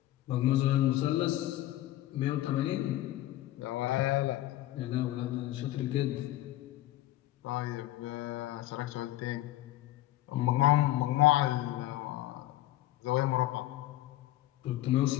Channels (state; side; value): quieter; right; 15.0 dB